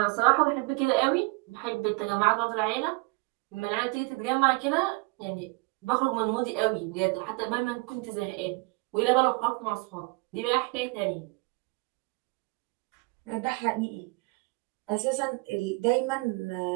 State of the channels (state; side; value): quieter; left; 27.6 dB